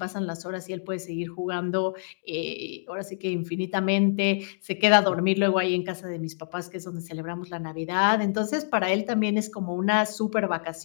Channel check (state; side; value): silent; right; digital silence